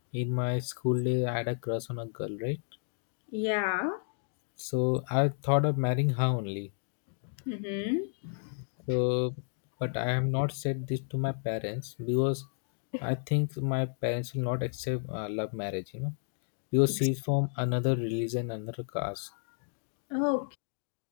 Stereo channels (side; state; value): right; silent; digital silence